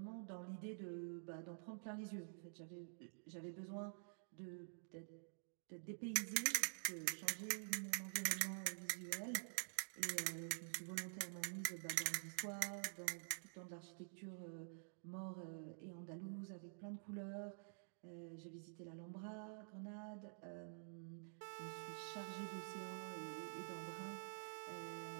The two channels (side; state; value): left; silent; digital silence